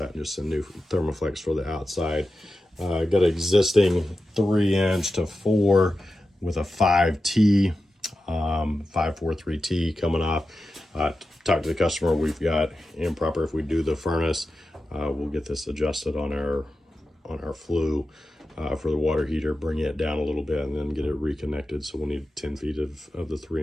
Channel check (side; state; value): both; normal; correlation 0.92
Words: and just a new Thermoflex for the outside. Got an existing 3-inch to 4 with a 5T, 543T coming off. Talk to the customer. We've got improper. If we do the furnace, we'll get this adjusted on our flue. For the water heater, bring it down a little bit and then get it reconnected. So we'll need 10 feet of the